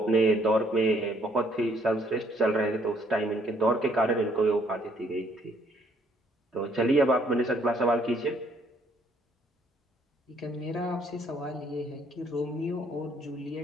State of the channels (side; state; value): both; normal; correlation 0.66